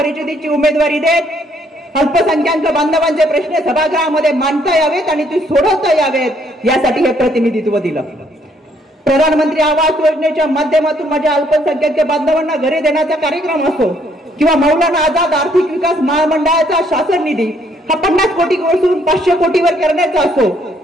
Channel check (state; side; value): normal; both; correlation 0.68